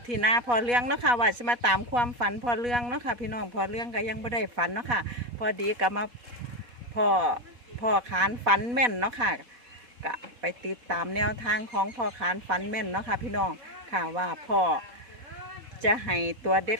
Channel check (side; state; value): left; late; 4.1 ms